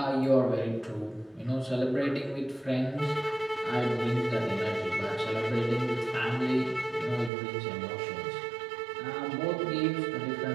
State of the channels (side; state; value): left; drops out; at 7.3 s